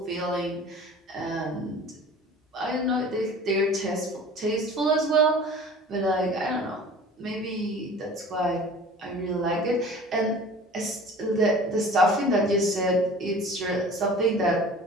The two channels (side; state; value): both; normal; correlation 0.43